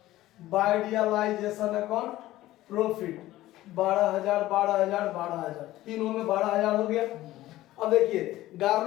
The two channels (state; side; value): quieter; right; 15.8 dB